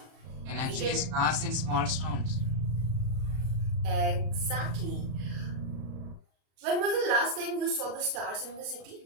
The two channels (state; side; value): late; left; 34 ms